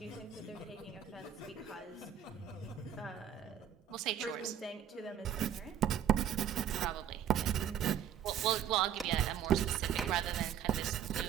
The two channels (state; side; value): quieter; left; 9.6 dB